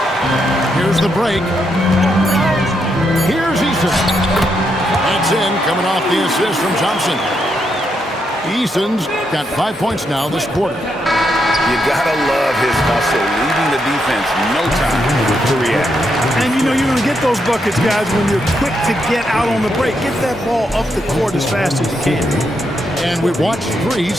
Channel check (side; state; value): both; normal; correlation 0.80